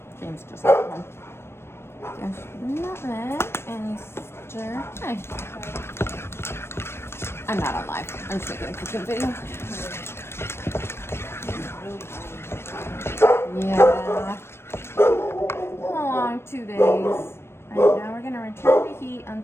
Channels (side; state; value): right; late; 0.12 ms